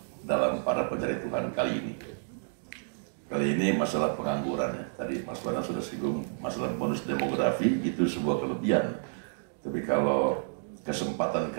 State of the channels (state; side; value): silent; left; digital silence